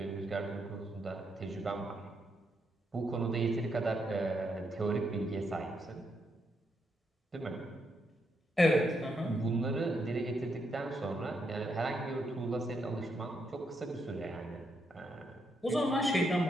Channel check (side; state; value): both; normal; correlation 0.79